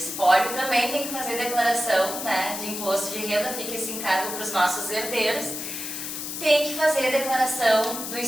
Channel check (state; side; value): noise; left; hiss, 6 dB below the sound